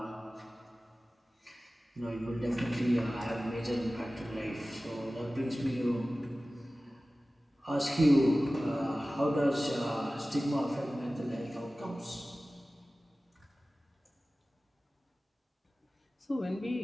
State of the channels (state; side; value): normal; both; correlation 0.97